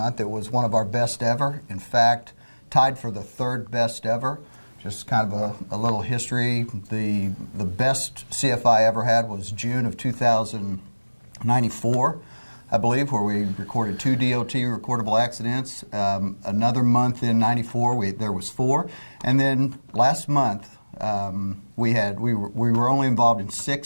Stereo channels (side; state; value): both; inverted; correlation -1.00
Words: It was one of our best ever. In fact, tied for the third best ever. Just kind of a little history. The best CFI ever had was June of 2094, I believe, where we recorded 2 DOT recordable accidents. Another month in 94, there was 4. And then last month, we were only involved in